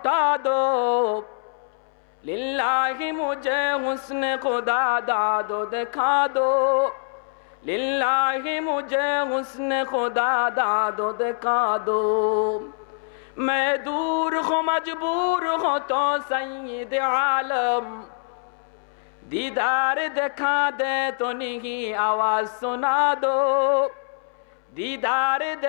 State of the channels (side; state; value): right; silent; 62 dB below the other